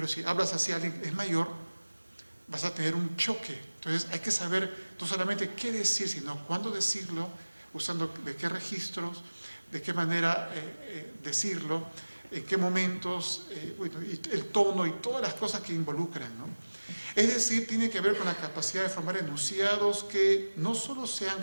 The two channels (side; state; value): both; inverted; correlation -1.00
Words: si hablas así a alguien que es mayor, vas a tener un choque. Entonces hay que saber no solamente qué decir, sino cuándo decirlo, usando de qué registros, de qué manera decirlo, en qué momentos, bueno, y el tono y todas las cosas que involucran, ¿no? Es decir, tiene que ver con la capacidad de formar enunciados que no solo sean